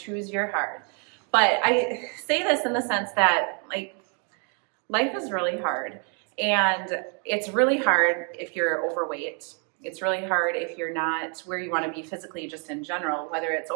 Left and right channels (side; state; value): left; quieter; 39.2 dB